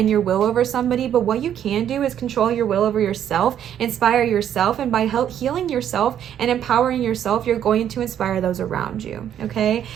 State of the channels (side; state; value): left; quieter; 9.9 dB